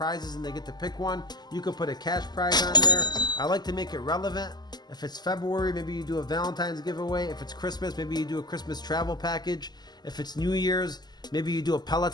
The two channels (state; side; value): late; right; 0.20 ms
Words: and they get to pick one. You could put a cash prize on there. I like to make it relevant. If it's February, maybe you do a Valentine's giveaway. If it's Christmas, maybe you do a Christmas travel package. If it's New Year's, maybe you do a